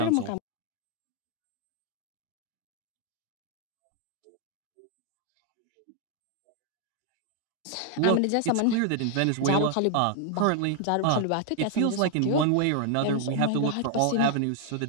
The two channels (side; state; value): both; different; correlation 0.00